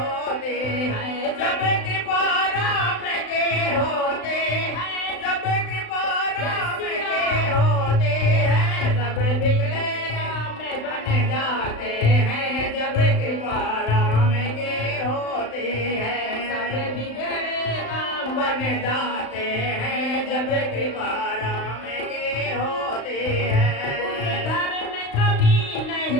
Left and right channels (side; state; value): right; late; 35 ms